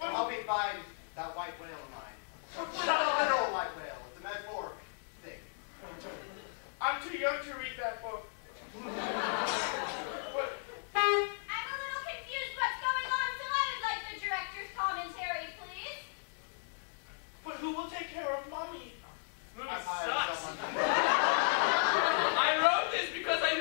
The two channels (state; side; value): silent; right; digital silence